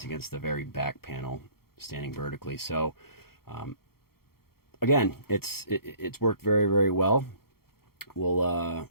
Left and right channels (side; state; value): right; late; 0.94 ms